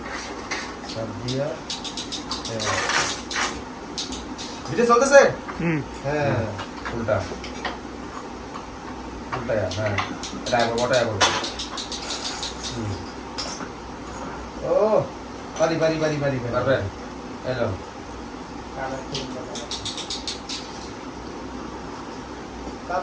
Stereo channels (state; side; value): identical; both; correlation 1.00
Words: সব দিয়া ভিডিও চলতেছে হ্যাঁ উল্টা উল্টা হ্যাঁ এটা আগে বটা আগে ও পারি পারি পারি পারি পারবে এলো